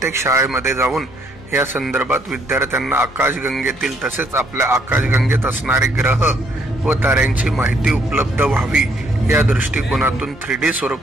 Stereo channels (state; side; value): normal; both; correlation 0.69